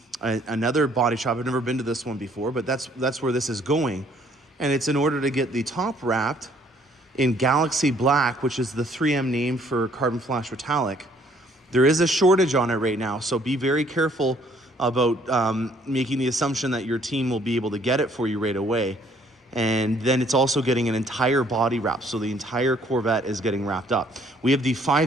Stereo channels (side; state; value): both; normal; correlation 0.62